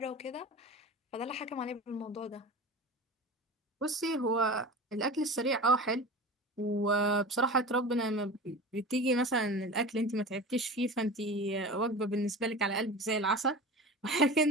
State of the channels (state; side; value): normal; both; correlation 0.33